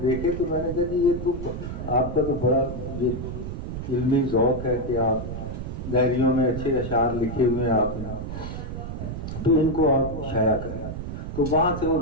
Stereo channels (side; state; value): right; noise; rumble, 6 dB below the sound